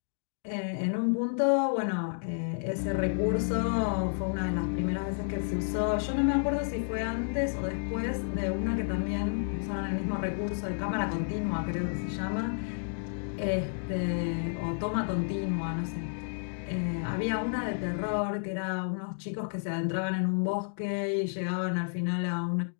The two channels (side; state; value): right; silent; digital silence